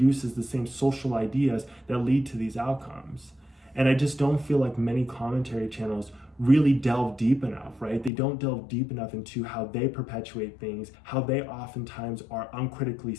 the same social ideas that lead to these outcomes. And I just don't feel like many commentary channels really delve deep enough, right? They don't delve deep enough into how they perpetuate things, how they oftentimes are uncritically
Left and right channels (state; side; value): drops out; right; at 8.1 s